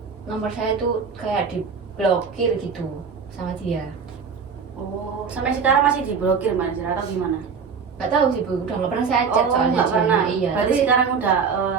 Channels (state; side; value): quieter; left; 5.8 dB